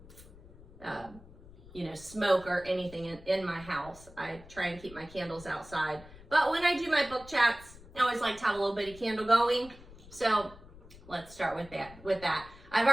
smoke or anything in my house. I try and keep my candles outside. But when I do my book chats, I always like to have a little bitty candle going. So let's start with that. I've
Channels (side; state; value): left; noise; rumble, 20 dB below the sound